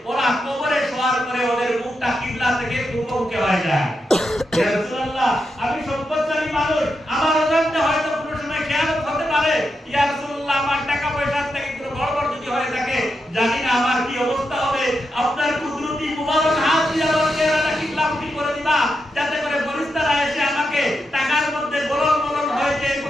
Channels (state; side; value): normal; both; correlation 0.86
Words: ওরা কবরে শোয়ার পরে ওদের মুখটা কিবলা থেকে পূর্বমুখী হয়ে যায়। ইয়া রাসূলুল্লাহ আমি সম্পদশালী মানুষ, আমার অজান্তে হয়তো কোনো সময়